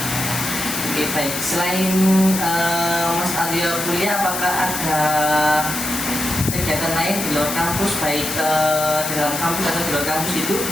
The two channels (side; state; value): left; noise; hiss, 4 dB below the sound